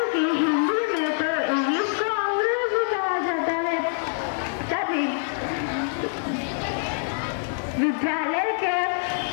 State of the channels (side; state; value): right; silent; 62 dB below the other